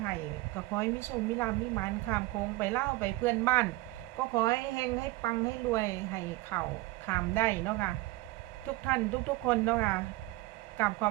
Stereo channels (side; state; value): left; quieter; 20.1 dB